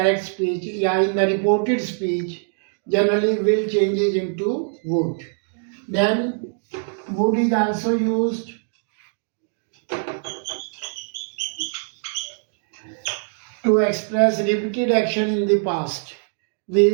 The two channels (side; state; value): left; silent; 63 dB below the other